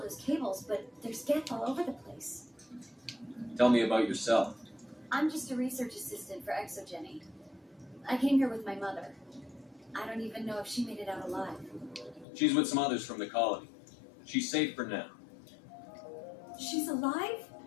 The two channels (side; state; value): right; drops out; at 12.2 s